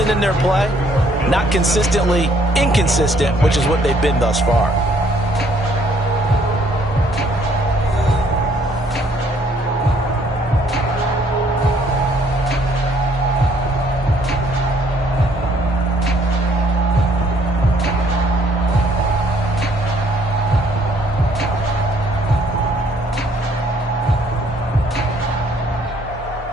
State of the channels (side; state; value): both; normal; correlation 0.64